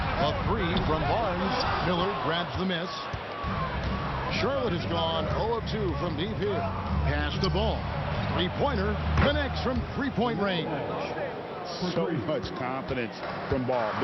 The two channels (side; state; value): both; identical; correlation 1.00